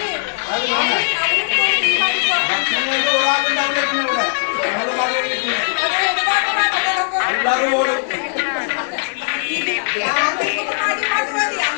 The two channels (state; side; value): silent; right; digital silence